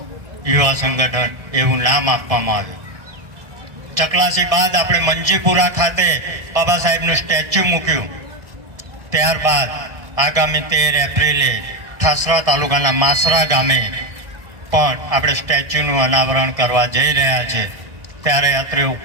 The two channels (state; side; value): late; left; 1.6 ms